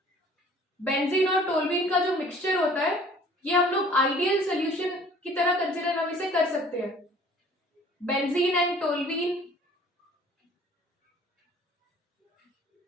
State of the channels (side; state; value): both; normal; correlation 0.52